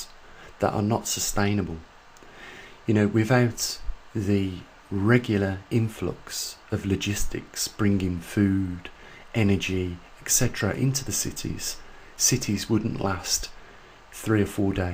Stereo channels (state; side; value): identical; both; correlation 1.00